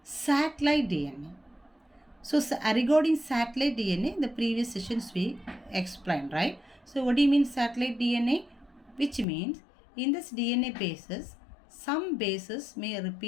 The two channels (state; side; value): drops out; right; at 9.2 s